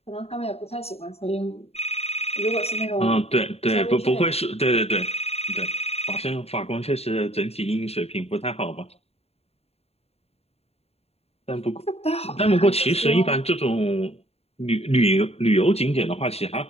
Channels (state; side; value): late; right; 0.30 ms